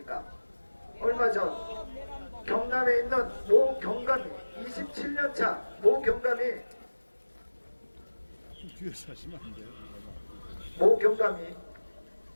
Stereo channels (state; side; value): inverted; both; correlation -1.00